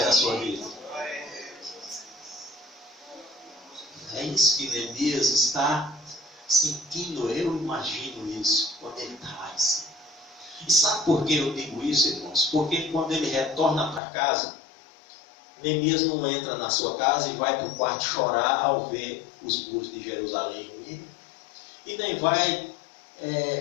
da sua vida. É isso que Neemias está sentindo, eu imagino isso, quando ele está lá em cima. E sabe por que eu digo isso, irmãos? Porque quando ele retorna para casa, Neemias não entra na sua casa e vai para o quarto chorar ao ver os muros de Jerusalém ruídos. E nem vai,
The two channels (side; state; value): right; drops out; at 14.0 s